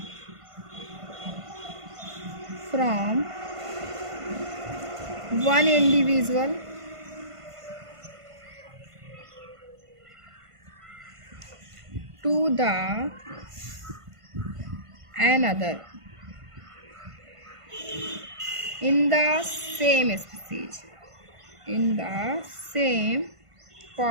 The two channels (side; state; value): left; late; 1.5 ms